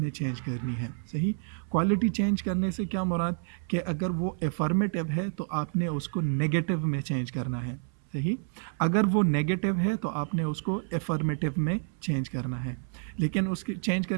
चेंज करनी है। सही, क्वालिटी चेंज करने से क्या मुराद कि अगर वो एफर्मेटिव है तो आपने उसको नेगेटिव में चेंज करना है। सही, अगर वो नेगेटिव है तो आपने उसको एफर्मेटिव में चेंज करना है। लेकिन उसके चेंज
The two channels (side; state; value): left; silent; 58 dB below the other